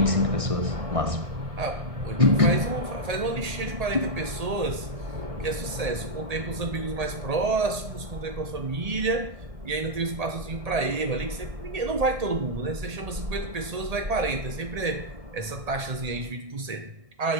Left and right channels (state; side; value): late; left; 1.8 ms